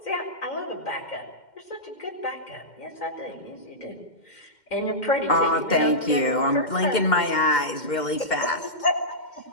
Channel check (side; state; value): right; late; 2.1 ms